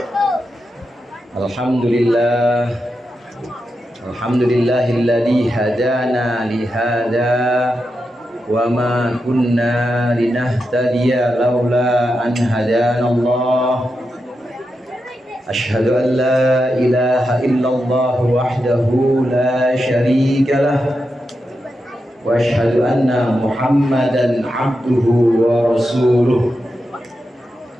Alhamdulillah, alhamdulillahilladzi hadana lihada wa ma kunna linahtadiya laula an hadana Allah. Ashhadu an la ilaha illallah wahdahu la syarika lah wa ashhadu anna Muhammadan abduhu wa rasuluh.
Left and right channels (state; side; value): normal; both; correlation 0.88